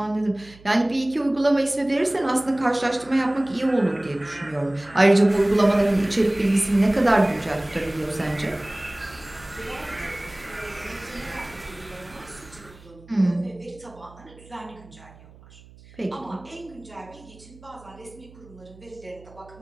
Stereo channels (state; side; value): noise; right; hum, 23 dB below the sound